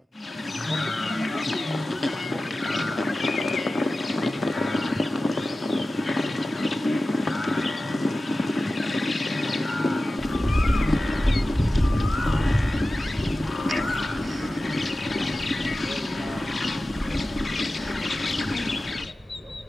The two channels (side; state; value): both; normal; correlation 0.95